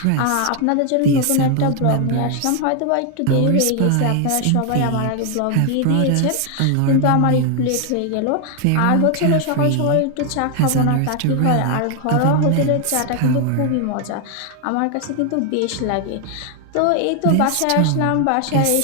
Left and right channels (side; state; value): both; different; correlation 0.00